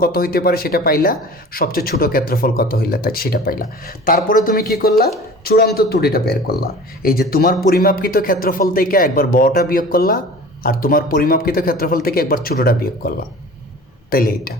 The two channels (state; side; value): normal; both; correlation 0.40